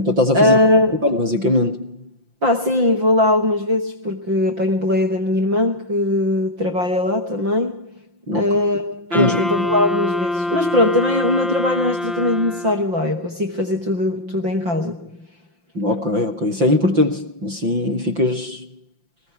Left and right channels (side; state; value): left; late; 5.8 ms